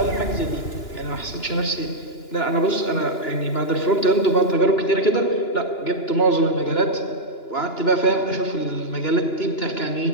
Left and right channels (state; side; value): late; right; 2.9 ms